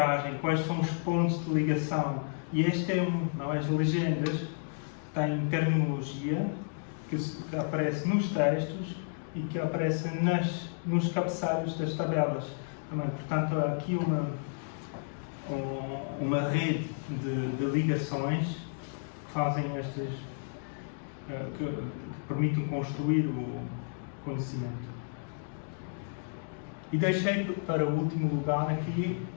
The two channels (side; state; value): right; silent; digital silence